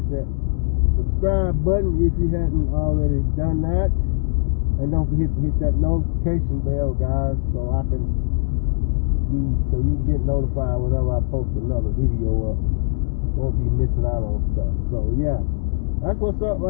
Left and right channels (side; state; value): right; silent; digital silence